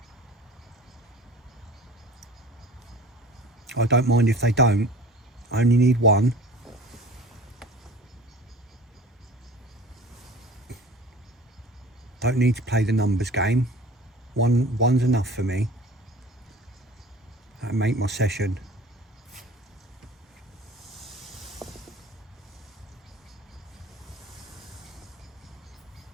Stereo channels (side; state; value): both; normal; correlation 0.41